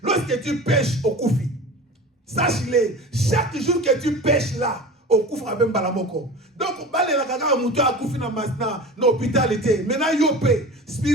Lorsque tu pêches au koufi, sache-le, chaque jour que tu pêches là, au koufi, même balamoko. Donc, dans l'hôpitalité, maintenant, yopé,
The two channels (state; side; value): normal; both; correlation 0.35